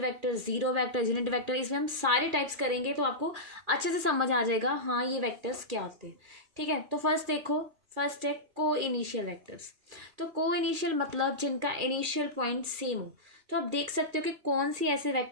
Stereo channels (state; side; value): late; left; 2.4 ms